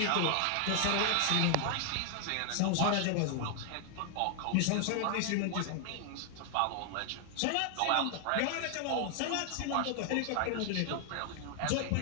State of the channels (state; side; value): different; both; correlation 0.00